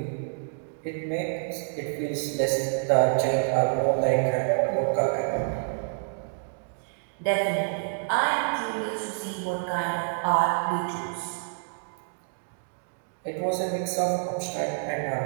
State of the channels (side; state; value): left; silent; digital silence